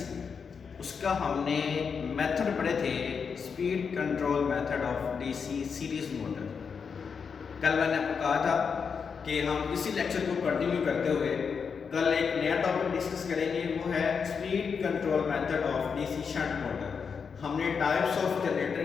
उसका हमने मेथड पढ़े थे, speed control method of DC series motor. कल मैंने आपको कहा था कि हम इसी लेक्चर को कंटिन्यू करते हुए कल एक नया टॉपिक डिस्कस करेंगे, वो है speed control method of DC shunt motor. हमने टाइप्स ऑफ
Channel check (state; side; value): quieter; right; 6.0 dB